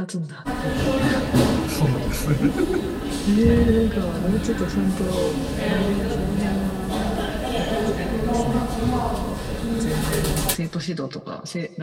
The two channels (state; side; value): identical; both; correlation 1.00